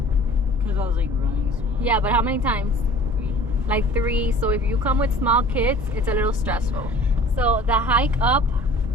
Because I was like running small. Yeah, but how many times? 3. Like 3. So if you come with small kids, it's a little stressful. So the hike up,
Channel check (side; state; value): both; normal; correlation 0.46